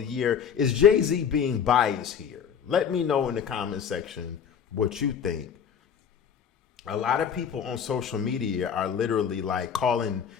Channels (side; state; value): right; quieter; 7.6 dB